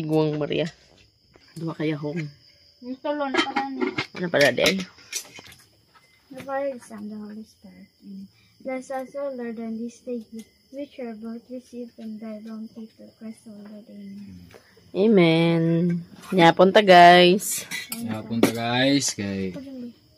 Maria. Dua kaya hong. Gusto lo na pa ni. Ano pala day? The Father, the Son, the Holy Spirit. Amen. Bless us, O Lord, on this day, which are both received from thy bounty through Christ our Lord. Amen. Amen. Yapunta guys. Punta guys, kay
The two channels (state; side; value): identical; both; correlation 1.00